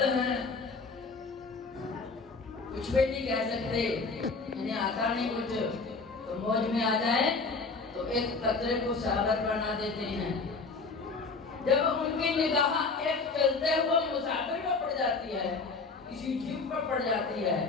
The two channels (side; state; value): right; quieter; 4.2 dB